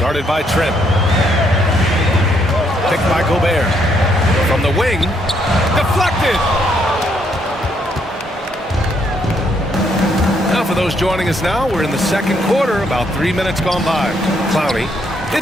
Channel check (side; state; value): both; normal; correlation 0.72